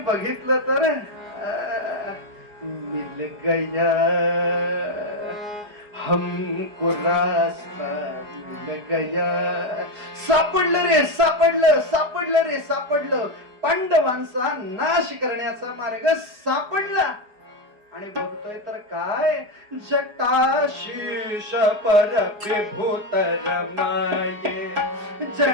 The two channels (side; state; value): left; late; 4.8 ms